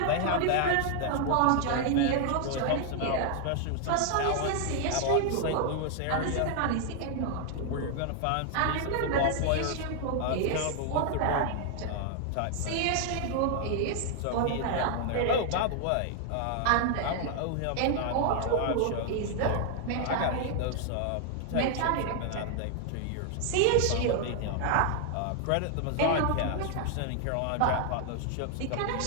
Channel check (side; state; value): both; different; correlation 0.00